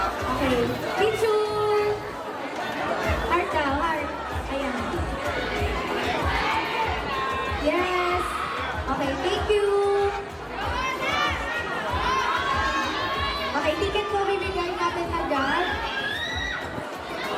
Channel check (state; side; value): identical; both; correlation 1.00